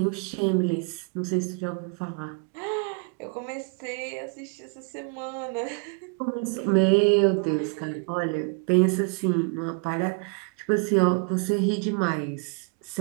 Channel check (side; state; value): left; quieter; 34.5 dB